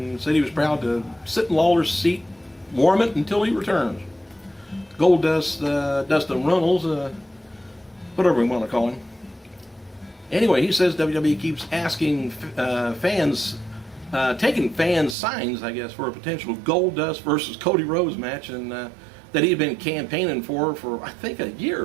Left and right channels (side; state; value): left; drops out; at 15.2 s